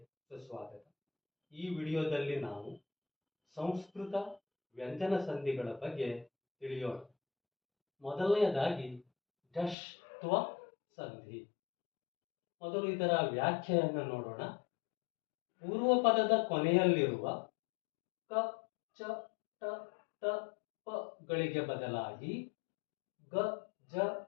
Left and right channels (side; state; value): right; drops out; at 9.8 s